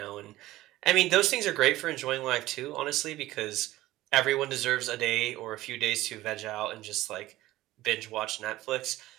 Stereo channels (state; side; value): quieter; left; 16.5 dB